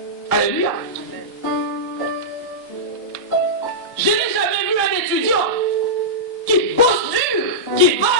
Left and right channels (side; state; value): both; normal; correlation -0.13